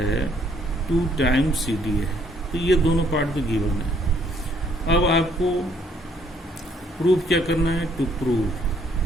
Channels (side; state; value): both; normal; correlation 0.66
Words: 2 टाइम्स CD है। तो ये दोनों पार्ट तो गिवन है। अब आपको प्रूफ क्या करना है, टू प्रूव